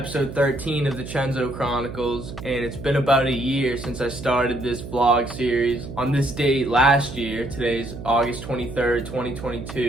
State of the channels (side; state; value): right; noise; hum, 11 dB below the sound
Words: 13 of the Chenzo Chronicles, and it's been about a year since I started this vlog series. On this date last year, today's August 23rd,